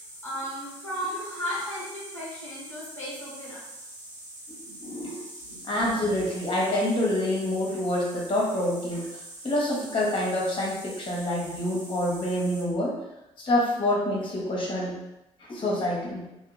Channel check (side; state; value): both; normal; correlation 0.50